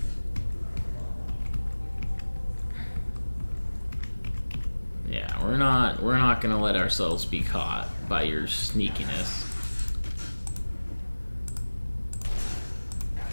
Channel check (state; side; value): inverted; both; correlation -1.00